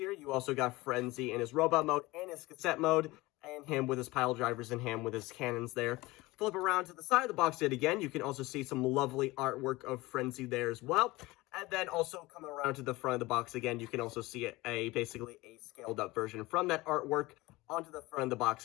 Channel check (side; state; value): right; quieter; 20.8 dB